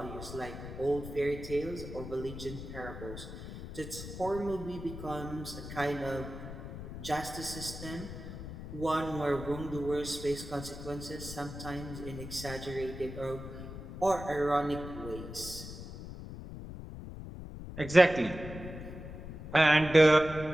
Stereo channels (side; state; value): left; noise; rumble, 10 dB below the sound